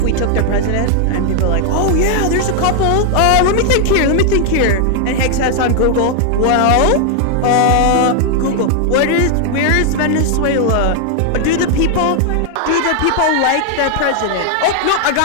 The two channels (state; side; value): different; both; correlation 0.00